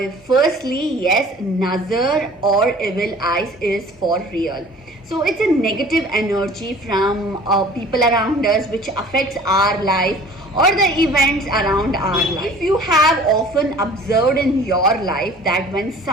firstly, yes, nazar or evil eyes is for real. So it's a negative energy from people around us which affects our life or the events around our life. If you have often observed in your life that when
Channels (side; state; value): both; normal; correlation 0.47